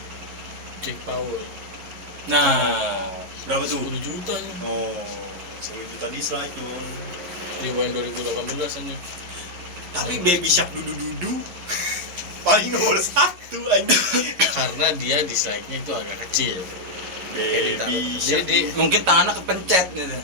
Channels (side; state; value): left; late; 11 ms